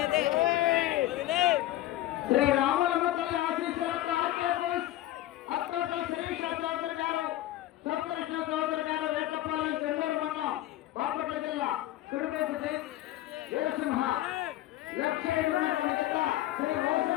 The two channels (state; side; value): quieter; right; 14.8 dB